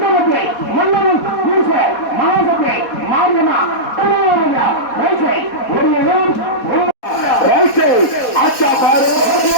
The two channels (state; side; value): late; right; 4.2 ms